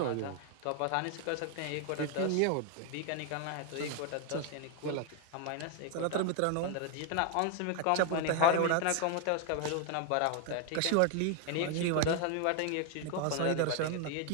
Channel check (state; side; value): different; both; correlation 0.01